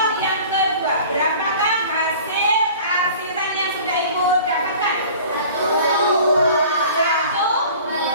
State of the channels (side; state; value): both; inverted; correlation -0.45